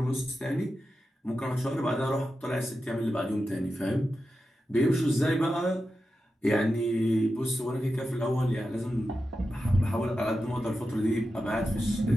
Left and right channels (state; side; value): normal; both; correlation 0.91